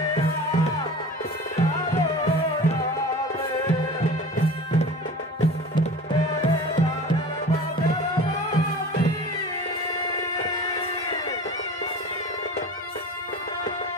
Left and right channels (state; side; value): normal; both; correlation 0.38